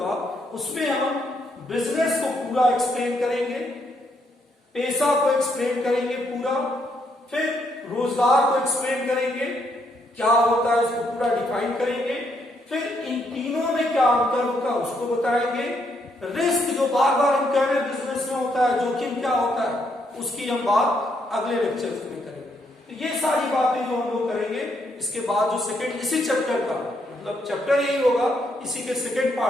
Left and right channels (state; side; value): normal; both; correlation 0.75